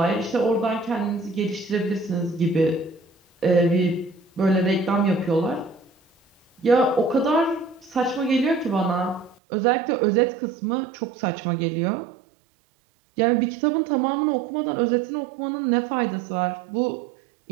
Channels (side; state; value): left; drops out; at 9.3 s